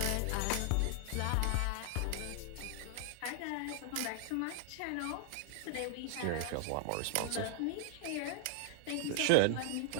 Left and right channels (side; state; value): both; different; correlation 0.00